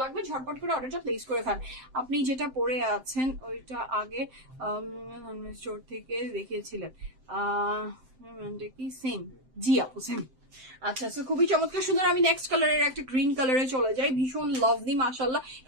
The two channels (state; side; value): late; left; 7.7 ms